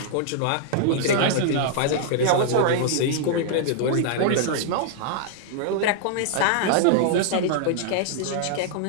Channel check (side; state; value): both; different; correlation -0.01